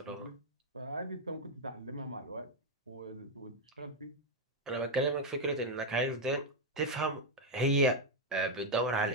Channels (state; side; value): normal; both; correlation 0.02